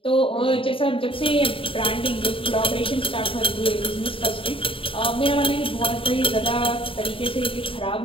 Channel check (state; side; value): late; right; 0.26 ms